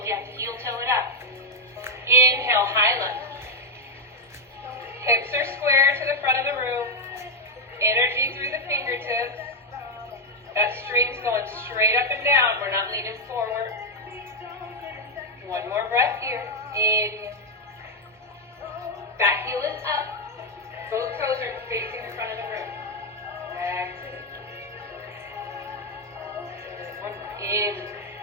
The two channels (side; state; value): both; normal; correlation 0.03